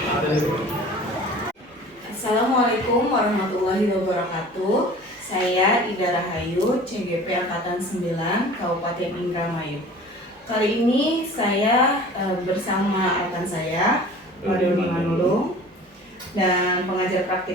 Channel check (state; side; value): normal; both; correlation 0.43